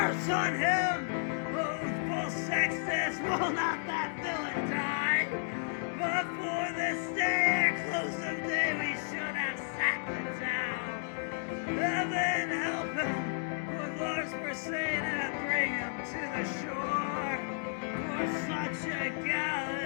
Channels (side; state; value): right; silent; digital silence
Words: on him, oathful Sextus, will not that villain die? But for this day, at close of day, we should have sacked the town. Heaven help him, for Lars were saying, and bring him to the shore. For such a